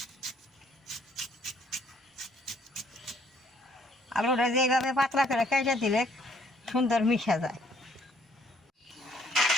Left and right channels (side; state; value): both; normal; correlation 0.64